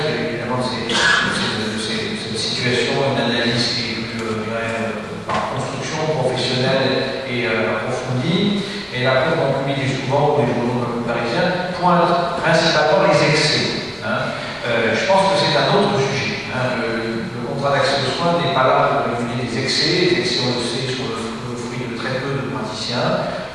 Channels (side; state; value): both; identical; correlation 1.00